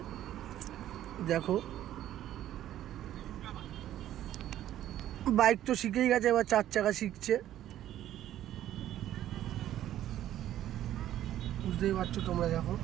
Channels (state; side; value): quieter; left; 12.4 dB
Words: দেখো। বাইক তো শিখেই গেছে, এবার 4 চাকা শিখছে, বুঝতেই পারছো তোমরা। দেখো